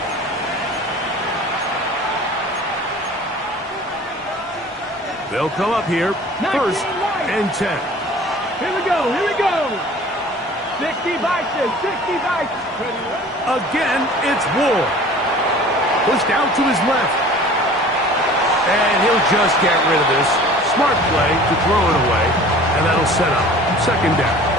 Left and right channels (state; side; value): normal; both; correlation 0.45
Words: They'll come up here, first and 10. Here we go. 60 Vikings, 60 Vikings. Again, it's Ward. Pushed out to his left. And he'll just get rid of this. Smart play to throw it away. And that'll set up second down.